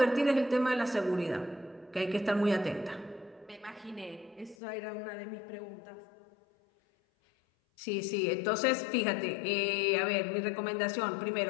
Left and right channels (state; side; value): drops out; right; at 4.5 s